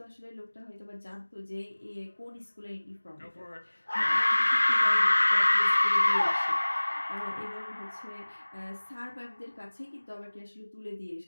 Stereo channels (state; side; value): inverted; both; correlation -1.00